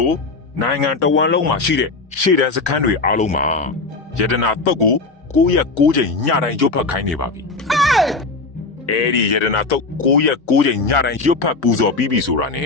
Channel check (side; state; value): right; quieter; 3.8 dB